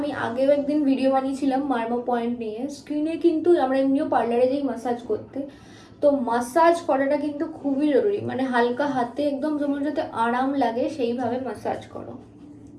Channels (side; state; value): both; identical; correlation 1.00